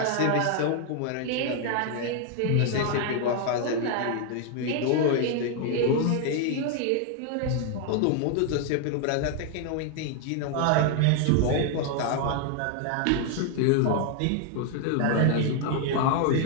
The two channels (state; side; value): different; both; correlation 0.00